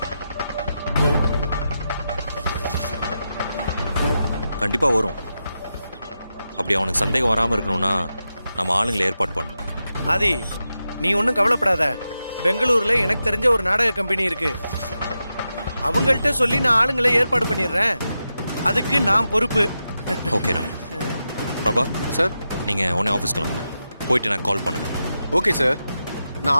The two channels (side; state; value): both; inverted; correlation -0.89